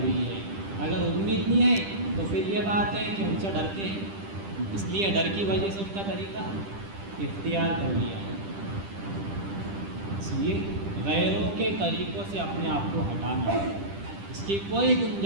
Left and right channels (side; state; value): left; late; 10 ms